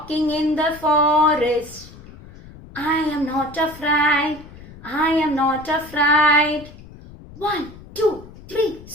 in the forest. I am not afraid, I am not afraid. 1, 2, 3,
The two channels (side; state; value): left; noise; rumble, 18 dB below the sound